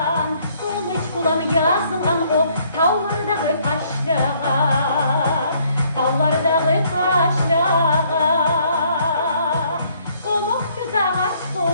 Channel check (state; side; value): inverted; both; correlation -0.65